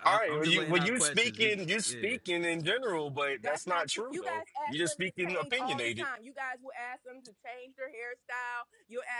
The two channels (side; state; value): both; identical; correlation 1.00